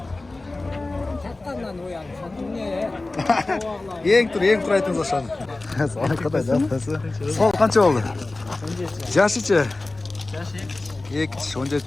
Çattandan uyan. Sen ne? Yeng tur aytыңыз aşağı. Sana kadar da atası. Sol kança oldu? Yaşıçı. Yaşı.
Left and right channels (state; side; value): quieter; right; 3.1 dB